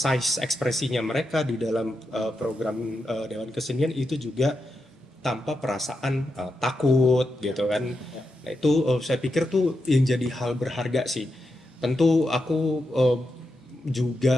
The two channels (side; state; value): both; normal; correlation 0.86